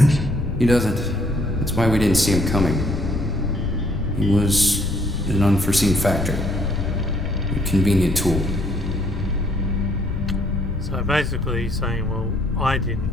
He doesn't. That's why we didn't see him coming. He was an unforeseen factor. A convenient tool. So basically he's saying, well, I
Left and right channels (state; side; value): noise; left; rumble, 5 dB below the sound